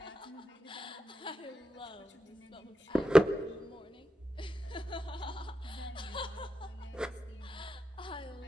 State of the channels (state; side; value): normal; both; correlation 0.88